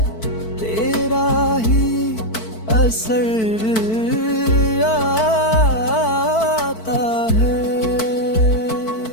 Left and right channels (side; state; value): right; late; 4.5 ms